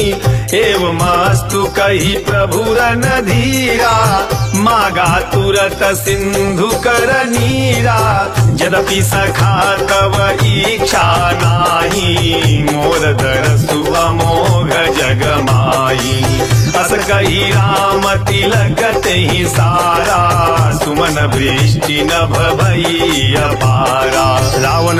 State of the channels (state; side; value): identical; both; correlation 1.00